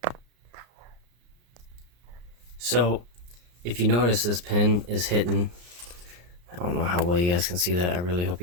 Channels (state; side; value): late; left; 34 ms